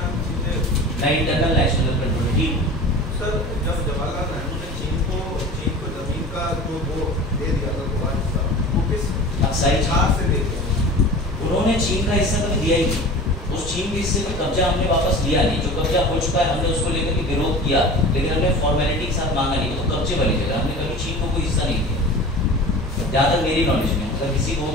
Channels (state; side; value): normal; both; correlation 0.37